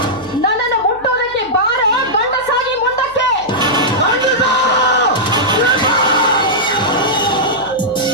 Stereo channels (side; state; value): right; noise; hum, 24 dB below the sound